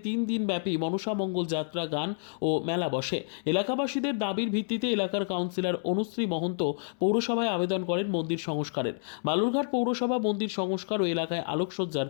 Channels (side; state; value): right; silent; 59 dB below the other